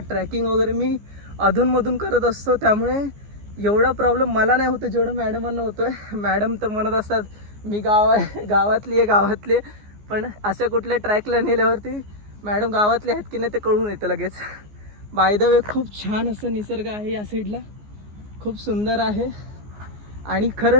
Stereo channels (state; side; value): late; left; 14 ms